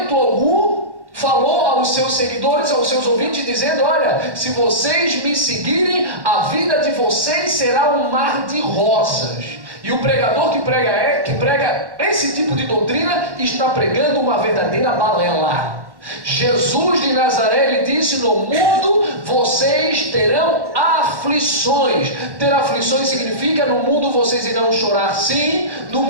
algum falou aos seus seguidores, aos seus ouvintes, dizendo: olha, se vocês me seguirem, a vida de vocês será um mar de rosas. E o pregador que prega esse tipo de doutrina está pregando uma verdadeira balela. Jesus de Nazaré, ele disse: no mundo vocês terão aflições. Ter aflições significa: no mundo vocês irão chorar, sim. No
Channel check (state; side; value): late; left; 1.1 ms